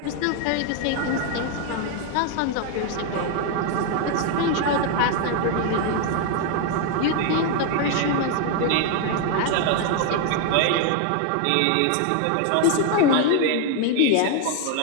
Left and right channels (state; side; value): different; both; correlation 0.01